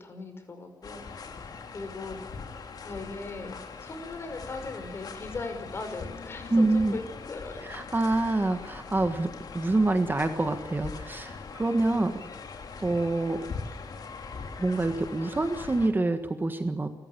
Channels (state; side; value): normal; both; correlation 0.91